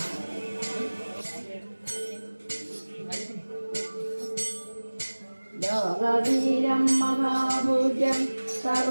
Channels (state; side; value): inverted; both; correlation -1.00